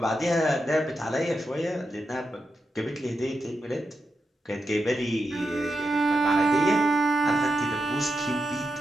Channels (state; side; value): normal; both; correlation 0.87